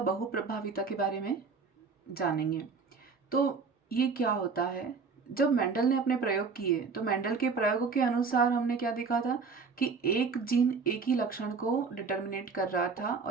बहुप्रभाविता के बारे में जानेंगे। तो ये क्या होता है? जब मेंडल ने अपने प्रयोग किए तो मेंडल के प्रयोगों के अनुसार हमने क्या देखा था कि एक जीन एक ही लक्षण को डिटर्मिनेट कर रहा था,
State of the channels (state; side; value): quieter; left; 5.0 dB